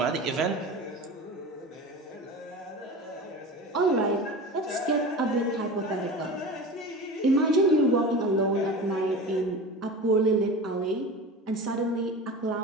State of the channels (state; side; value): normal; both; correlation 0.31